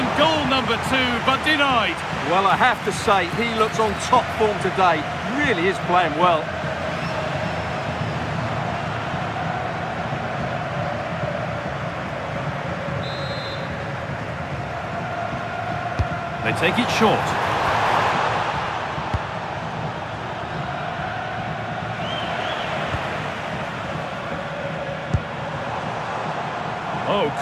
goal number 2, but denied. Well, I have to say, he looks on top form today. Really is playing well. They take it short. Oh,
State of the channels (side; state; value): both; identical; correlation 1.00